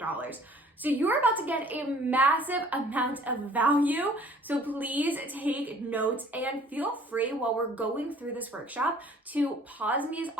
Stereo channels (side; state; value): both; normal; correlation 0.54